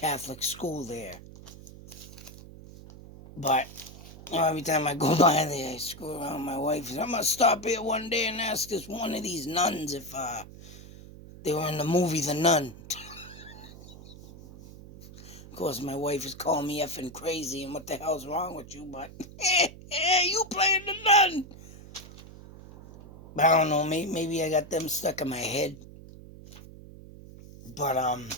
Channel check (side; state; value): right; noise; hum, 17 dB below the sound